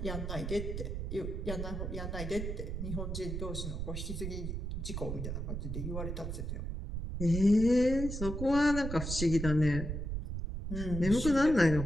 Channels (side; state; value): right; noise; rumble, 4 dB below the sound